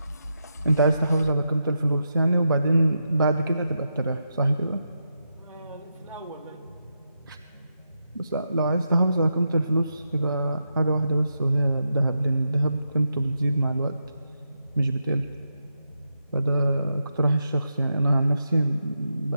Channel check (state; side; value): inverted; both; correlation -0.85